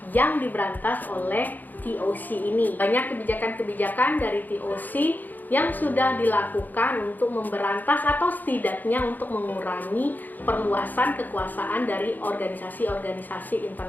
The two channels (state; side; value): late; right; 0.085 ms